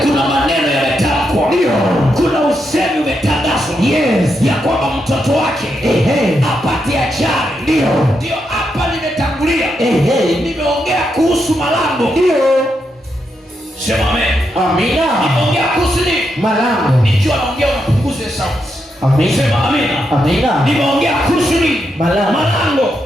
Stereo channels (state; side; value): normal; both; correlation 0.83